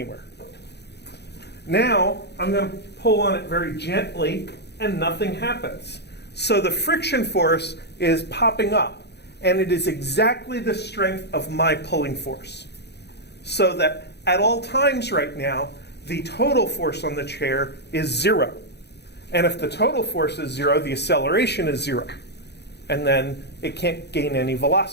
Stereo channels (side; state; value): right; late; 0.49 ms